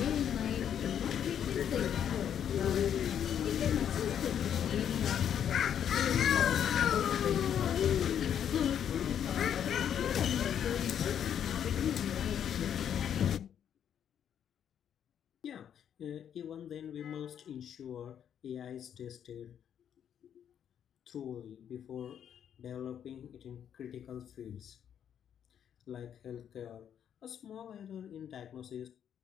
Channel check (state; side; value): quieter; right; 9.1 dB